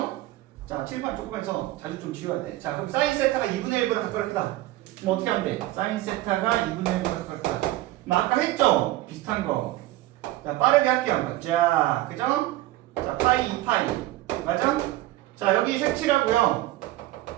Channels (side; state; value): left; quieter; 16.5 dB